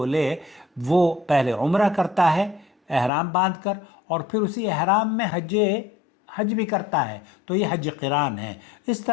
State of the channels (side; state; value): right; drops out; at 3.1 s